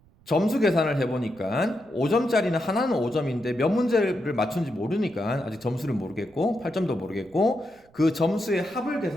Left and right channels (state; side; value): noise; right; rumble, 30 dB below the sound